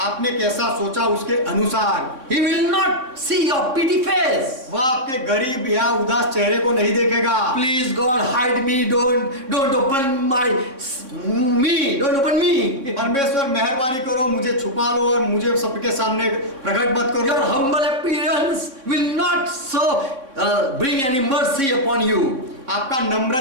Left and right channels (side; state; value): left; late; 3.6 ms